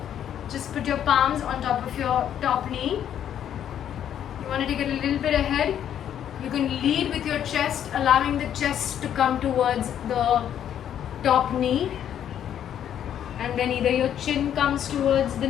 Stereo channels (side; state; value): right; quieter; 9.9 dB